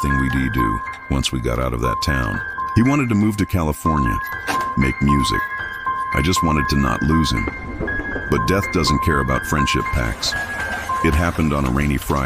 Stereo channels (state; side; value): identical; both; correlation 1.00